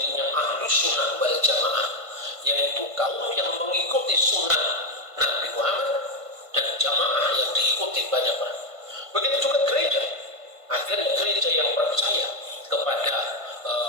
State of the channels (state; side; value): late; left; 1.5 ms